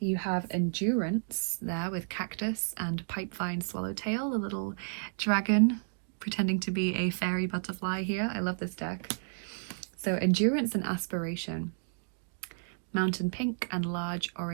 You have Endurance there with Cactus and Pipevine Swallowtail, a little dragon pretending to be a fairy butterfly here. I love this deck. So Endurance and Aspiration. Mountain Pink and Large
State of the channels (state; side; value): silent; left; digital silence